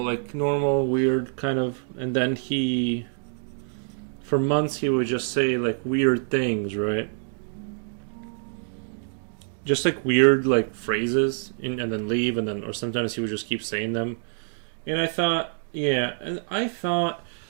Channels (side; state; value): left; silent; digital silence